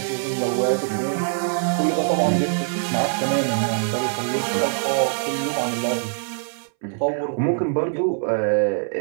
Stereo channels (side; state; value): left; silent; 64 dB below the other